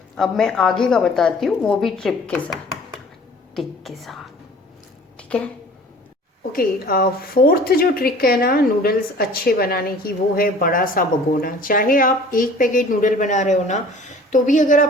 अब मैं आगे का बताती हूँ, वो भी ट्रिप के साथ, टिक के साथ, ठीक है। ओके, फोर्थ जो ट्रिक है ना नूडल्स अच्छे बनाने की, वो है बड़ा सा भगोना। चाहे आप 1 पैकेट नूडल बना रहे हो ना, तो भी अगर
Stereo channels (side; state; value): both; normal; correlation 0.48